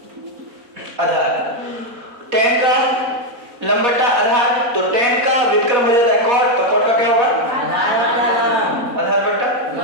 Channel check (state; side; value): late; left; 4.2 ms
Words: आधार। टेन का लंब बटा आधार, तो टेन का व्युत्क्रम हो जाता है कॉट, तो कॉट का क्या होगा? आधार बटा